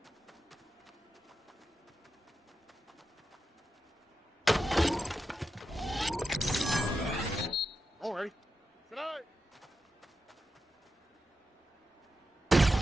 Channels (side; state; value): both; normal; correlation 0.89